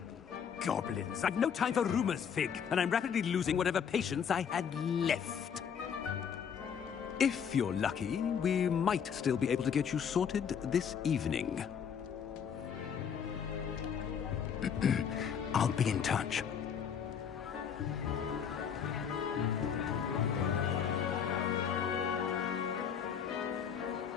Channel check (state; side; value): quieter; right; 7.5 dB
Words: Goblins. I've no time for rumors, Fig, and I'm rapidly losing whatever patience I had left. If you're lucky, we might still be able to get you sorted this evening. I'll be in touch.